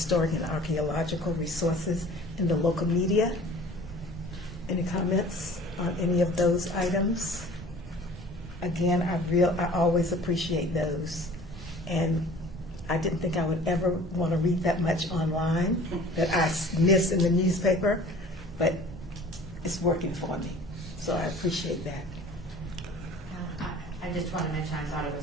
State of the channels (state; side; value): normal; both; correlation 0.46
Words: and archaeological resources in the local media. Any comments on any of those items? Again, I always appreciate those. And I didn't think I would ever want to read that much online that I miss in the newspaper, but it's working for me. So I appreciate that. I just want to mention, I thought it